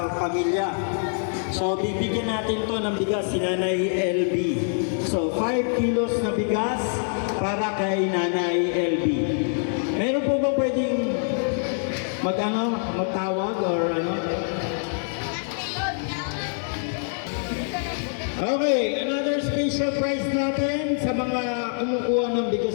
pamilya. So, bibigyan natin to ng bigas si Nanay LB. So, 5 kilos na bigas para kay Nanay LB. Meron po ba pwedeng magtawag or ano? Okay, another special prize natin sa mga kumukuha ng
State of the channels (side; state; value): right; silent; digital silence